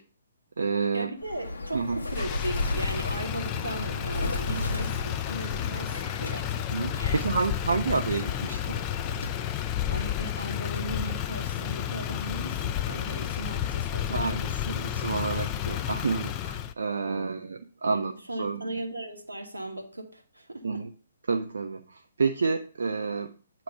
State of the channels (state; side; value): inverted; both; correlation -0.55